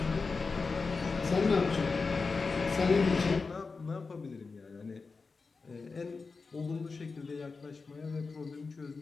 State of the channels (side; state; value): right; quieter; 4.4 dB